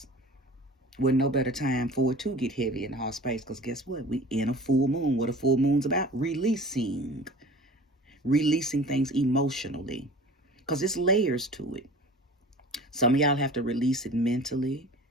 Well, no better time for it to get heavy in the heart space, because guess what? We in a full moon. What a full moon's about? Releasing things emotionally, because it's layers to it. Some of y'all have to release it mentally,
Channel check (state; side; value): normal; both; correlation 0.42